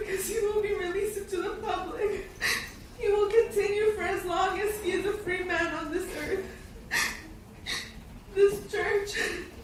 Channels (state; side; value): identical; both; correlation 1.00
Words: he will be released into the public. He will continue for as long as he is a free man on this earth. This church,